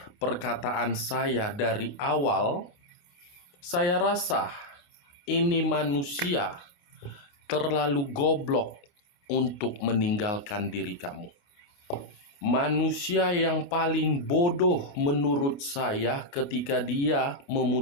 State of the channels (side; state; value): right; late; 29 ms